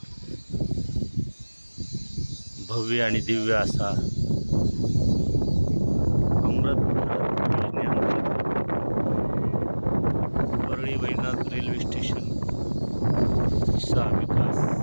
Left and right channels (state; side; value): inverted; both; correlation -1.00